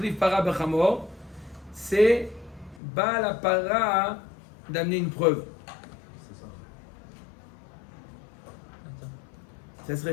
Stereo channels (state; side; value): drops out; right; at 2.8 s